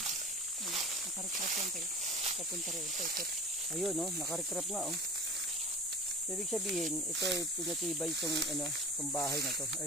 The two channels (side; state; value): both; normal; correlation 0.38